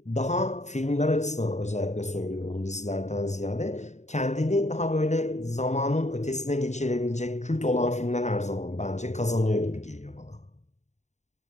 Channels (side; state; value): right; late; 0.34 ms